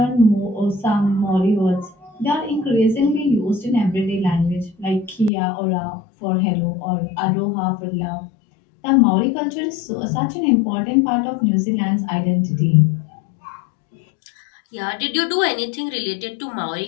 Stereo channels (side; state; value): right; drops out; at 5.3 s